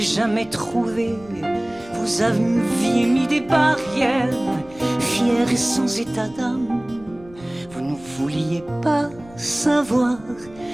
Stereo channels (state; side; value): noise; left; rumble, 22 dB below the sound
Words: trouvé, vous aviez mis des barrières, fier et sans état d'âme. Vous ne vouliez pas savoir